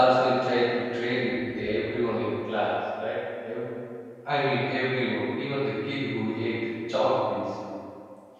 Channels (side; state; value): both; identical; correlation 1.00